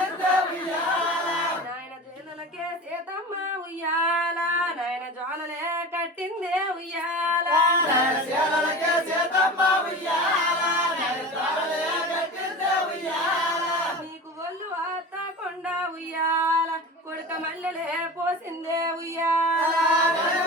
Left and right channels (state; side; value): normal; both; correlation 0.32